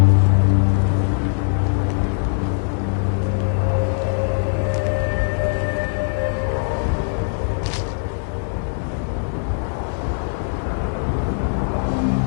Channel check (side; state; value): right; silent; 59 dB below the other